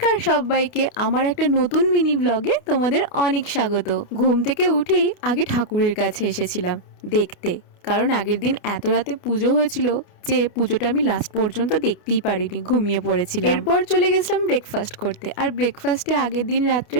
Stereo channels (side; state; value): right; late; 29 ms